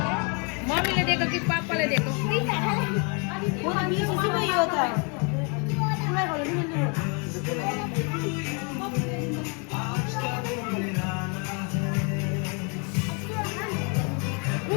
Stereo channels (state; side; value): quieter; right; 35.0 dB